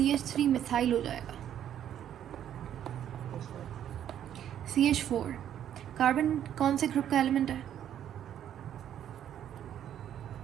मिथाइल हो जाएगा। CH4 कार्बन कौन से ग्रुप का एलिमेंट है?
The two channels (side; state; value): left; quieter; 10.3 dB